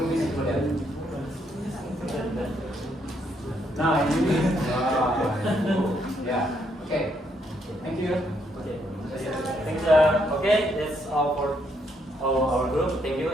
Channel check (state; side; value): normal; both; correlation 0.74